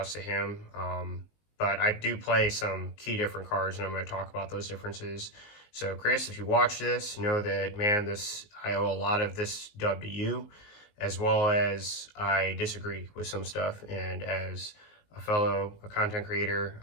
to him. But I do play some key different cards, and I'm going to talk about those differences. So Chris, if you watch this, know that, man, I owe a lot of this dub to you, as well as I disagree with some stuff. And as a fellow content creator,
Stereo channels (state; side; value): late; right; 19 ms